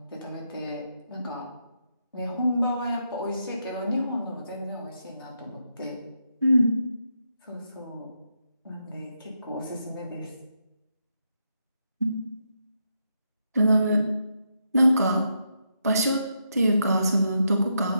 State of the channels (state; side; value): inverted; both; correlation -0.82